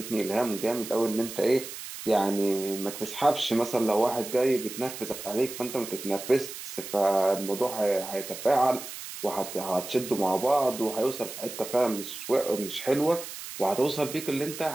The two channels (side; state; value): right; noise; hiss, 10 dB below the sound